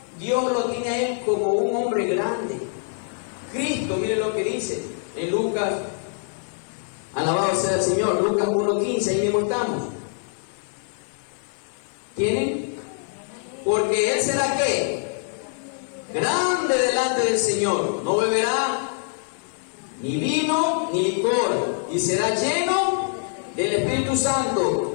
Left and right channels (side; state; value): right; silent; 62 dB below the other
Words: Dios lo tiene a él como un hombre grande. Cristo, miren lo que dice en Lucas, alabado sea el Señor, Lucas 1:15, ahí mismo estamos. ¿Tienen? Porque él será ¿qué? Grande delante del Señor, no beberá ni vino ni licor, y será lleno del Espíritu